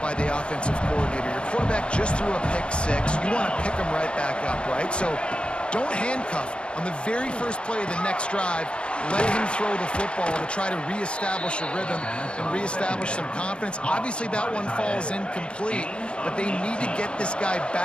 by the offensive coordinator. Your quarterback just threw a pick six. You want to pick him right back up, right? So don't handcuff him. On the very first play of the next drive, let him throw the football to try to reestablish a rhythm and reestablish some confidence. Obviously, that one falls incomplete, but they need to get this guy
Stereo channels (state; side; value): late; right; 0.057 ms